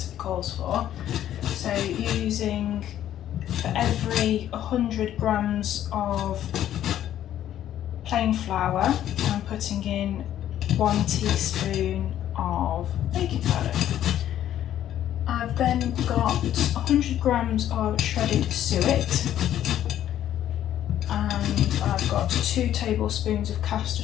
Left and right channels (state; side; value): quieter; right; 11.5 dB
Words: calls for. So using, for every 100 grams of plain flour, I'm putting in 1 teaspoon of baking powder. I've then got 100 grams of shredded suet, and I've got 2 tablespoons of